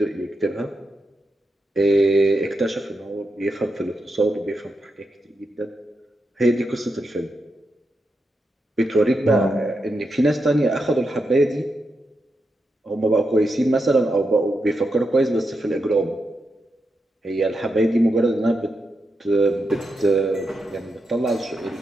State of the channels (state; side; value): normal; both; correlation 0.86